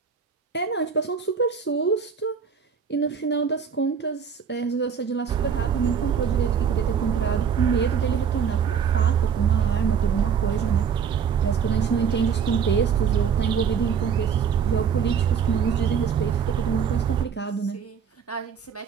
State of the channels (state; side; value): quieter; left; 7.0 dB